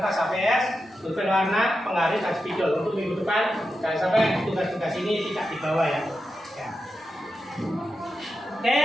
HVS, pulpen warna, penggaris, dan spidol. Untuk minggu depan, jangan sampai tugas-tugas ini tidak dibawa ya.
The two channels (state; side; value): normal; both; correlation 0.89